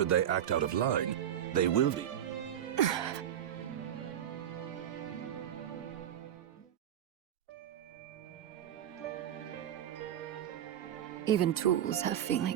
they act out of line, they will be. Even tools have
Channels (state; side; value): quieter; left; 10.4 dB